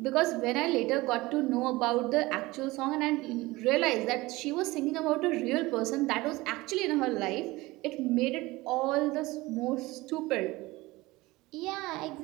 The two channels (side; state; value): left; quieter; 20.6 dB